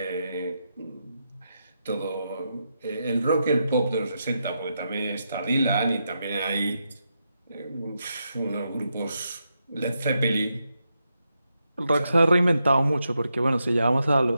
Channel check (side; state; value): both; inverted; correlation -0.84